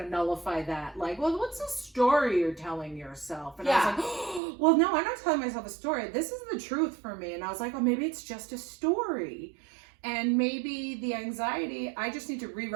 of nullify that. Like, well, what's the story you're telling yourself? And I was like, oh, well, no, I'm not telling myself a story. This is the truth for me. And I was like, oh, maybe it's just a story. And maybe the anxiety, I just need to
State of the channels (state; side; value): drops out; left; at 4.4 s